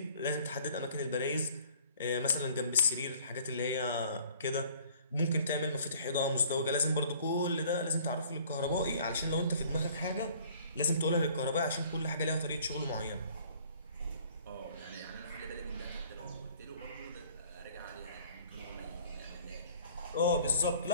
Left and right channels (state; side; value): inverted; both; correlation -0.54